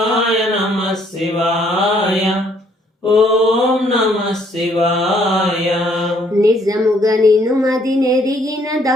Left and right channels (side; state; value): both; normal; correlation 0.66